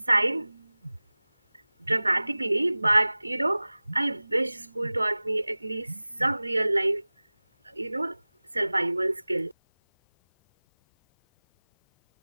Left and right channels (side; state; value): both; inverted; correlation -0.99